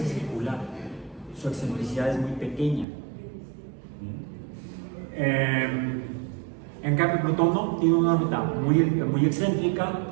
circular, su excentricidad es muy pequeña. En cambio Plutón no, tiene una órbita muy excéntrica,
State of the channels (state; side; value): drops out; left; at 2.9 s